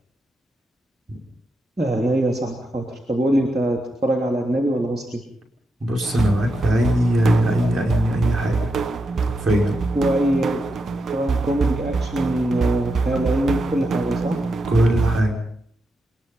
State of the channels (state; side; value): normal; both; correlation 0.85